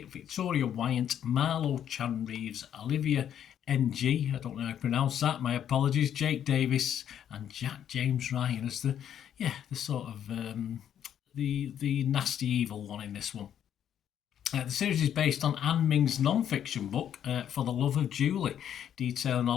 Victoria Wyant, Marlo Chan-Reeves, Olivia NG, I don't know how to pronounce that, my apologies, Jake Davis, and Jack James Ryan as the sort of the nasty evil one in this one. The series is based on Anne Ming's non-fiction book, For the Love of Julie, detailing a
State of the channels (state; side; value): quieter; right; 9.7 dB